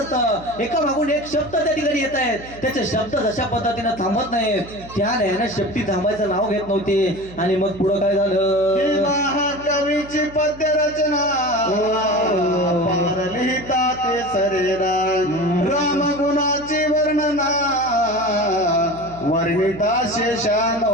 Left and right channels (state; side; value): noise; right; hum, 17 dB below the sound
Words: एका मागून एक शब्द त्या ठिकाणी येत आहेत, त्याचे शब्द जशा पद्धतीने थांबत नाहीत, त्या नयानं शेपटी थांबायचं नाव घेत नव्हती. आणि मग पुढं काय झालं, महाकवीची पद्य रचना पार लिहिता ते सरेरा, राम गुणाची वर्णना वर्णिता शेषान